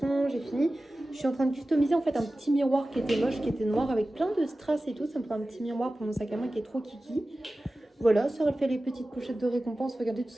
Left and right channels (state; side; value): normal; both; correlation 0.96